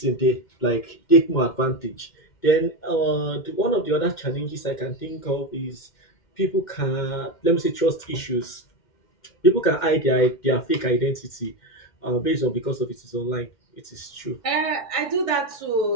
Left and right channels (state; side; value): late; right; 2.1 ms